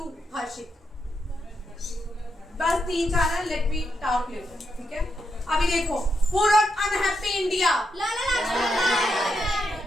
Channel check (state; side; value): normal; both; correlation 0.82